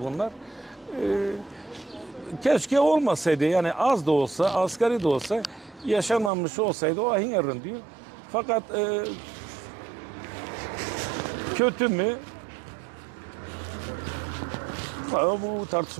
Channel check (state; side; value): drops out; left; at 6.3 s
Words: bunlar. Keşke olmasaydı yani az da olsa, asgari de olsa yaşanmamış olsaydı o ahin yarın diyor. Fakat kötü mü? Bu